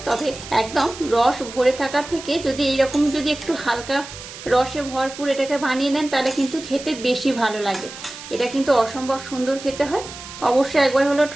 তবে একদম রস ভরে থাকার থেকে যদি এইরকম যদি একটু হালকা রসে ভরপুর এটাকে বানিয়ে নেন তাহলে কিন্তু খেতে বেশি ভালো লাগে। এটা কিন্তু অসম্ভব সুন্দর খেতে হয়। অবশ্যই একবার হলেও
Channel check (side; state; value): right; noise; hiss, 13 dB below the sound